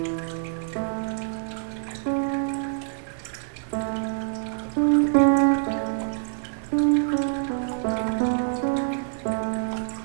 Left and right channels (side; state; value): left; silent; digital silence